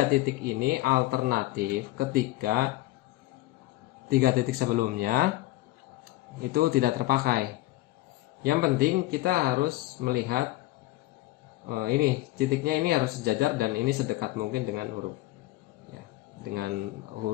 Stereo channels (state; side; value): quieter; right; 17.8 dB